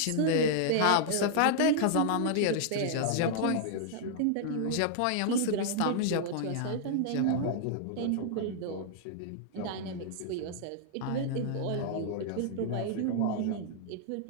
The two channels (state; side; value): different; both; correlation -0.01